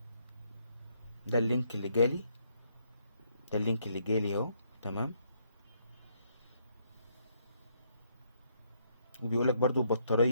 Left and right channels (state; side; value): inverted; both; correlation -0.72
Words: ده اللينك اللي جالي، ده اللينك اللي جالي اهو. تمام. وبيقولك برضو